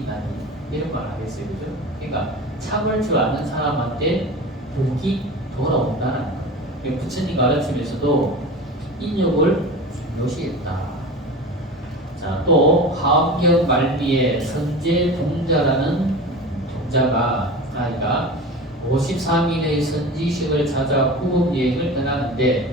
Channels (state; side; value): normal; both; correlation 0.32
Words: 이런 말 하겠어요, 그죠? 그러니까 참을 줄 아는 사람한테 복이 돌아온다는 거예요. 부처님 가르침에서도 인욕을 중요시했다. 자, 또 화엄경 말미에 선제 동자라는 동자가 아이가 53일의 선지식을 찾아 구급 여행을